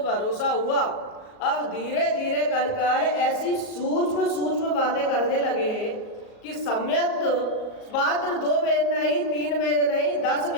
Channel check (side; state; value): right; late; 38 ms